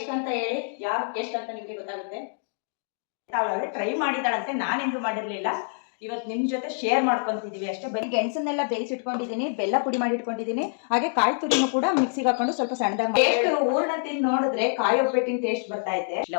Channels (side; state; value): right; silent; digital silence